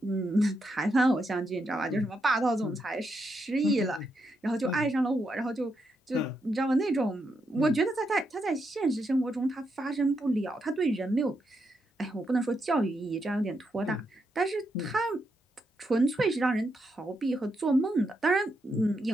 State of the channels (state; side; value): normal; both; correlation 0.82